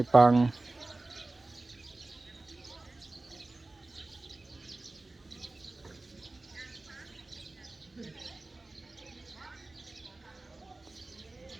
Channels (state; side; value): quieter; left; 3.0 dB